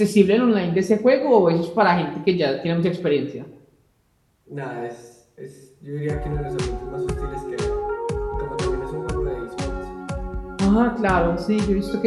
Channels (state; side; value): identical; both; correlation 1.00